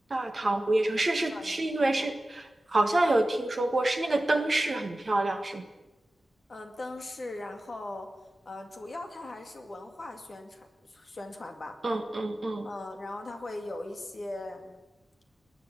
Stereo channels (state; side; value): normal; both; correlation 0.95